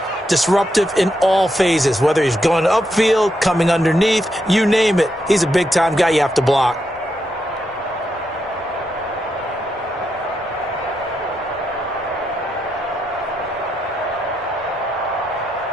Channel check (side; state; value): both; normal; correlation 0.82